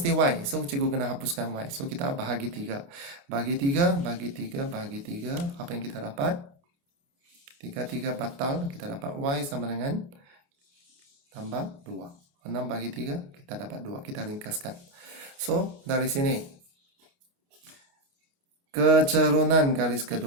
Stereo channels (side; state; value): left; late; 29 ms